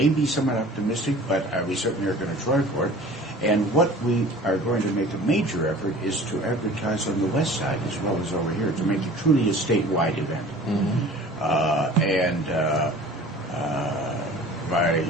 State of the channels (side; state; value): both; normal; correlation 0.44